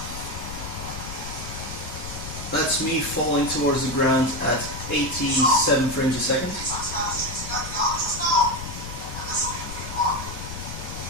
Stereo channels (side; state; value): left; noise; rumble, 9 dB below the sound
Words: That's me falling towards the ground at 87 frames a second.